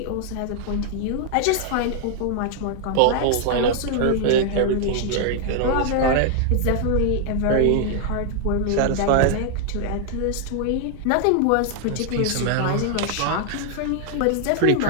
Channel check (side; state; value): both; different; correlation 0.00